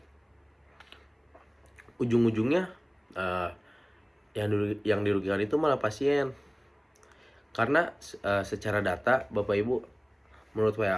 Ujung-ujungnya yang dirugikan itu malah pasien. Karena secara data Bapak Ibu, menurut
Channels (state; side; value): identical; both; correlation 1.00